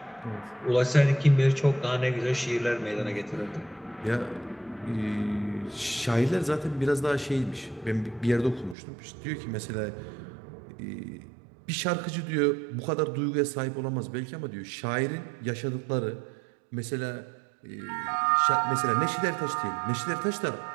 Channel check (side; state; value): left; drops out; at 8.8 s